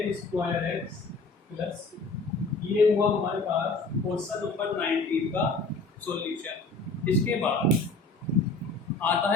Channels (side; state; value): right; quieter; 3.5 dB